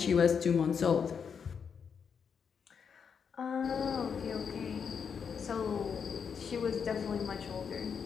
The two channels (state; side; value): quieter; right; 6.6 dB